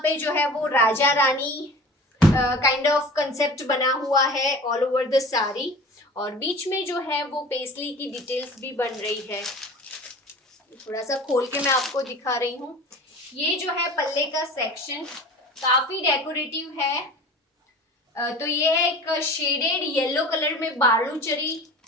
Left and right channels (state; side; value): normal; both; correlation 0.39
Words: पे जो है वो Raja Rani kind of concept बना हुआ है ऑल ओवर द साड़ी. और बीच में जो है वो पेस्ली की डिटेल्स भी बन रही है. थोड़ा सा खोल के मैं आपको दिखा रही हूँ. ये जो है पल्ले का सेक्शन काफी डेकोरेटिव है. तो ये है एक शेडेड येलो कलर में बालूचरी